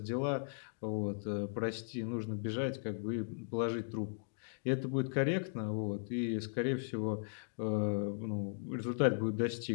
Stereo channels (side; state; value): right; silent; digital silence